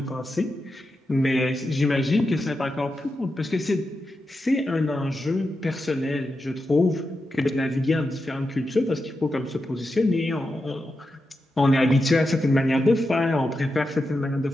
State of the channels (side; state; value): both; normal; correlation 0.88